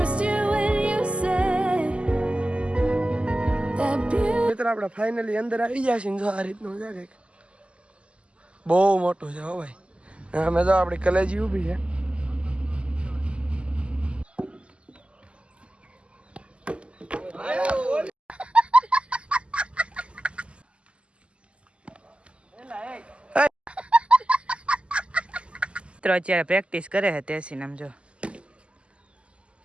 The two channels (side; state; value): left; late; 0.054 ms